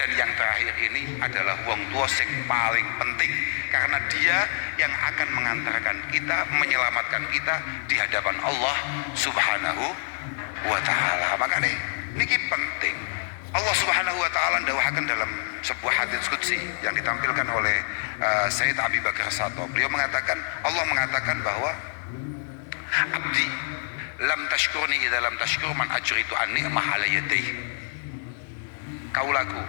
yang terakhir ini adalah wong tua sing paling penting karena dia yang akan mengantarkan kita, menyelamatkan kita di hadapan Allah Subhanahu wa taala. Makanya niki penting. Allah Subhanahu wa taala ndawuhaken dalam sebuah hadits qudsi yang ditampilkan oleh Sayyid Abi Bakar Sato. Beliau mengatakan, Allah mengatakan bahwa abdi lam tashkurni idza lam tashkur man ajritu an ni'mah ala yadayhi. Kaulaku,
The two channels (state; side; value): silent; right; digital silence